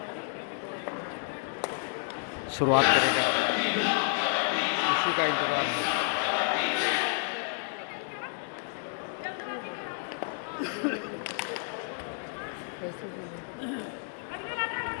शुरुआत करेगा, उसी का इंतजार है।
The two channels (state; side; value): silent; right; 57 dB below the other